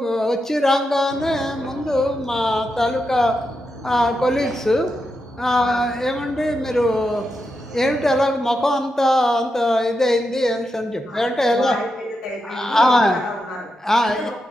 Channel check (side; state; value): both; normal; correlation 0.86